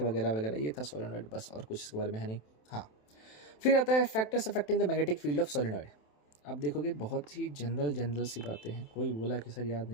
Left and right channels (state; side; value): late; right; 27 ms